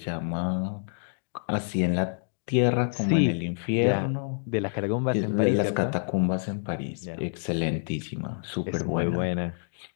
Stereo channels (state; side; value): silent; right; digital silence